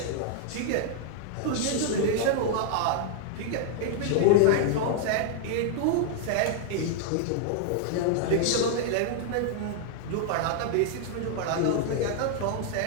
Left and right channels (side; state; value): both; different; correlation 0.00